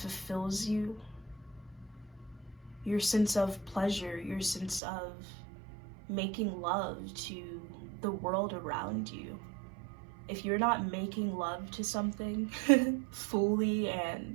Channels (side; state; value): left; drops out; at 4.8 s